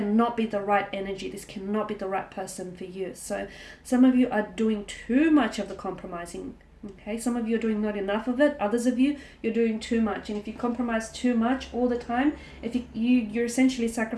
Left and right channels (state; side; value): identical; both; correlation 1.00